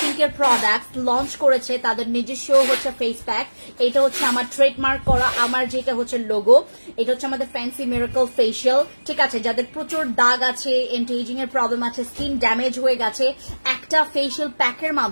care product launch করেছে, তাদের নিজস্ব হচ্ছে ফেস প্যাক। এটা হচ্ছে আমার ট্রেডমার্ক করা, আমার যেটা হচ্ছে লোগো। এটা হচ্ছে আমাদের ফ্যান্সি মিরাকল ফেশিয়াল, ঠিক আছে? যাদের প্রচুর দাগ আছে, এন্টি এজিং এর প্রবলেম আছে, স্কিন ড্যামেজ হয়ে গেছে, একটা ফেশিয়াল প্যাকের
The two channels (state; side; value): inverted; both; correlation -1.00